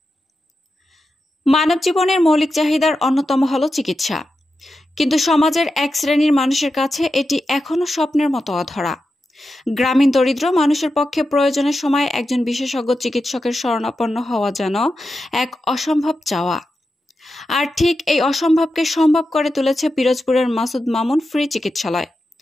মানব জীবনের মৌলিক চাহিদার অন্যতম হল চিকিৎসা, কিন্তু সমাজের এক শ্রেণীর মানুষের কাছে এটি এখনো স্বপ্নের মতো অধরা। গ্রামীণ দরিদ্র মানুষের পক্ষে প্রয়োজনের সময় একজন বিশেষজ্ঞ চিকিৎসকের শরণাপন্ন হওয়া যেন এক অসম্ভব চাওয়া। আর ঠিক এই অসম্ভবকে সম্ভব করে তুলেছে পিরোজপুরের মাসুদ মামুন ফ্রি চিকিৎসালয়।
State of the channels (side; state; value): both; normal; correlation 0.90